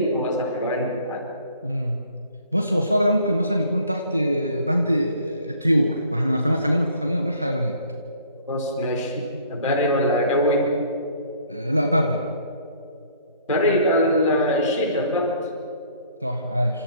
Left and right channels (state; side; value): inverted; both; correlation -0.57